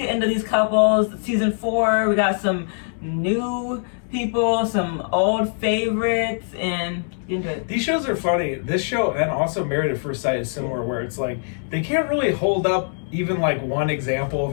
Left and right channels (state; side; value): silent; right; digital silence